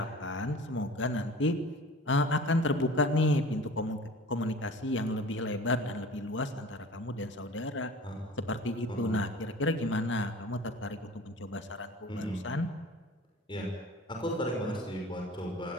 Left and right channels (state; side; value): normal; both; correlation 0.41